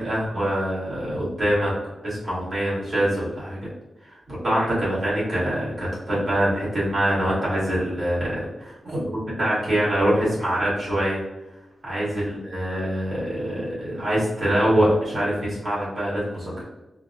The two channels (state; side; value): normal; both; correlation 0.91